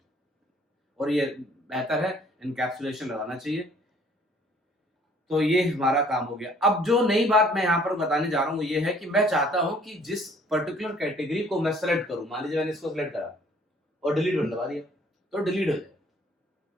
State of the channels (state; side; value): normal; both; correlation 0.58